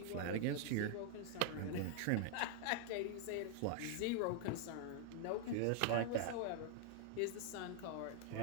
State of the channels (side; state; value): both; different; correlation 0.00